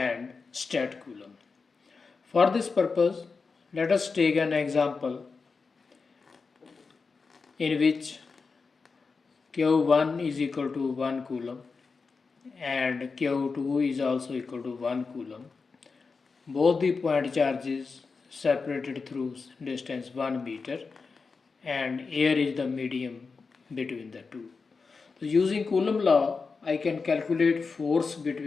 stat Coulomb. For this purpose, let us take an example in which Q1 is equal to 1 Coulomb and Q2 is also equal to 1 Coulomb. Both the point charges separated through distance 1 meter, and air is the medium between the two. So using Coulombs law, I can calculate force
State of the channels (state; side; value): quieter; right; 4.7 dB